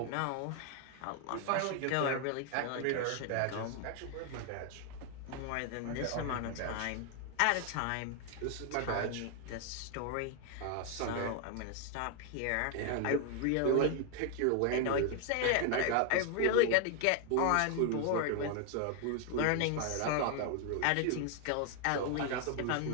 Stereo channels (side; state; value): both; different; correlation 0.00